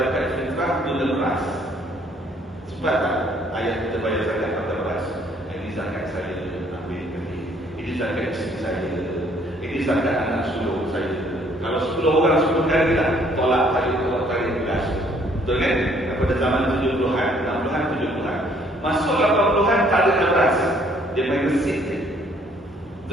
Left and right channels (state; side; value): normal; both; correlation 0.63